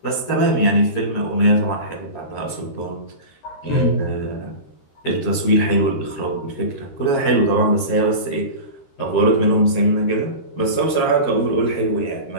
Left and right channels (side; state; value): right; late; 13 ms